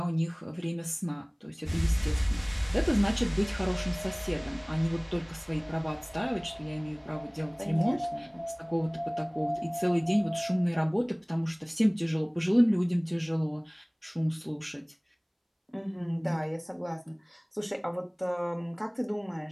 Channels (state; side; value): identical; both; correlation 1.00